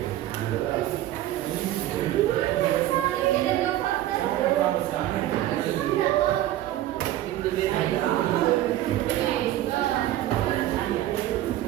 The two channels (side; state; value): left; quieter; 14.0 dB